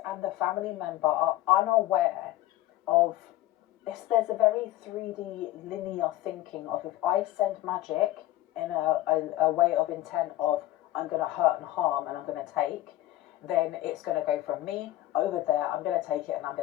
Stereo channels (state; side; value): quieter; right; 15.5 dB